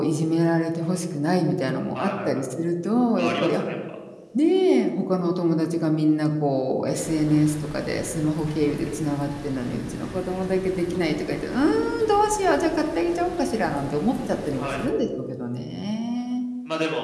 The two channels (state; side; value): identical; both; correlation 1.00